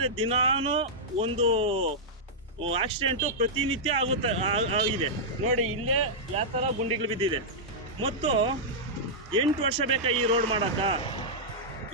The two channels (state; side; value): normal; both; correlation -0.09